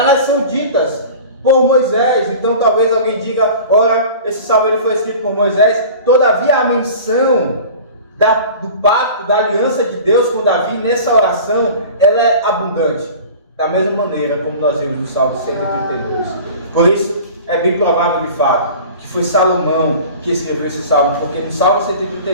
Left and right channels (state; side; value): inverted; both; correlation -0.39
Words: são ditas por Moisés. Então talvez alguém diga, ora, esse salmo ele foi escrito por Moisés. Todavia a menção do pacto, da aliança de Deus com Davi nessa oração, ela é abundante, da mesma maneira como nós vemos no Salmo 132. Por isso é bem provável de fato que foi Salomão que escreveu esse salmo, porque no Salmo